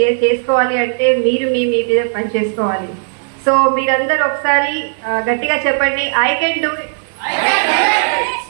చేసుకోవాలి అంటే మీరు మీ మీద పని చేసుకోవాలి. సో మీరందరూ ఒకసారి గట్టిగా చెప్పండి, I can do it,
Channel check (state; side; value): silent; left; digital silence